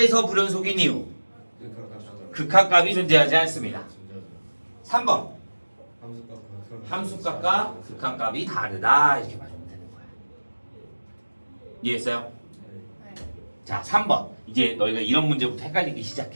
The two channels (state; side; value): inverted; both; correlation -1.00